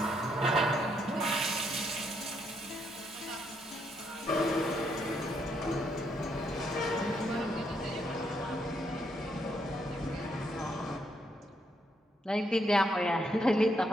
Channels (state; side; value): normal; both; correlation 0.75